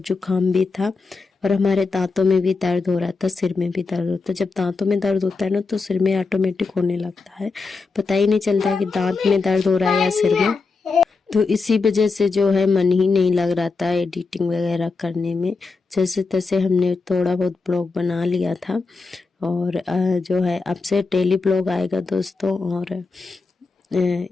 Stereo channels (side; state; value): right; quieter; 4.2 dB